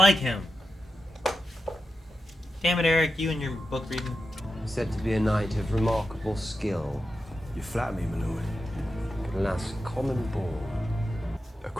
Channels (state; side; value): normal; both; correlation 0.89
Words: him. Damn it, Eric, you and your book reading. Said to be a knight of remarkable skill. You flatter me, my lord. Could last common ball. A